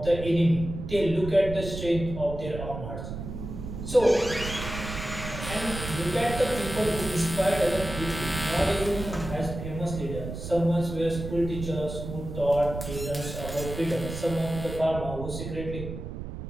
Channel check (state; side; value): noise; right; rumble, 8 dB below the sound